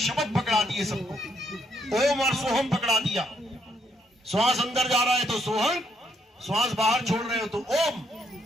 पकड़ा दिए सबको, ओम और सोहम पकड़ा दिया। श्वास अंदर जा रहा है तो सोहम, श्वास बाहर छोड़ रहे हो तो ओम,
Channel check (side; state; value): both; normal; correlation 0.73